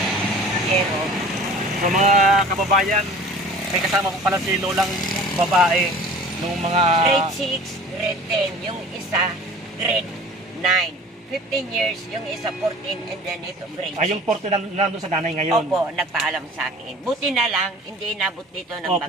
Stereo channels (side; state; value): both; normal; correlation 0.44